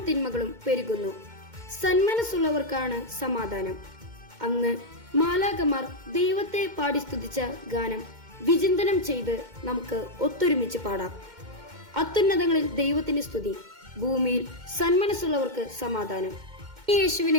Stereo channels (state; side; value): late; left; 2.1 ms